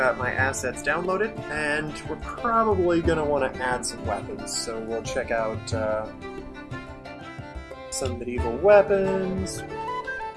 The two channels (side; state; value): both; identical; correlation 1.00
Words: my assets downloaded, and we're probably going to want to add some weapons. So we'll check out some medieval weapons.